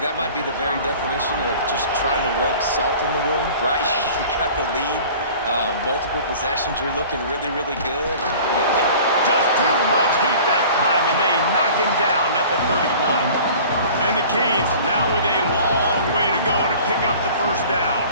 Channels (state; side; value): inverted; both; correlation -0.44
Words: that might be the very definition of just trying to rub salt in the wound, right? You got the lead, multiple possessions, you're looking really, really good. Just too much heat that time, and they knock him down at the 31. And the Canes now with a long way to go to pick up the first down.